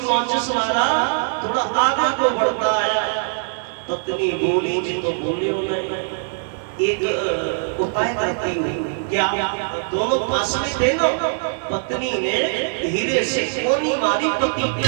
माचिस वाला थोड़ा आगे को बढ़ता आया। पत्नी बोली जी तो बोले हो नहीं, एक उपाय करती हूँ, क्या दोनों पास में थे ना? पत्नी ने धीरे से कोनी मारी पति पे,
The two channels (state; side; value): silent; left; 58 dB below the other